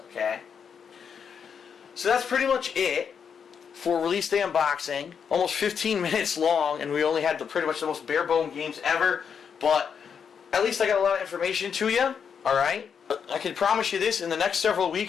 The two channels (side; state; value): right; quieter; 7.0 dB